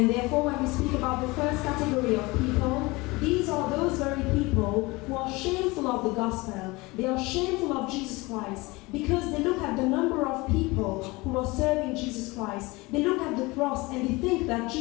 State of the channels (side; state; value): right; quieter; 23.3 dB